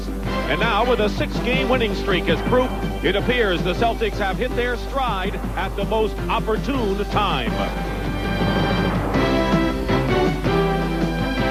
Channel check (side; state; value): both; identical; correlation 1.00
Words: And now, with a 6-game winning streak as proof, it appears the Celtics have hit their stride at the most opportune time.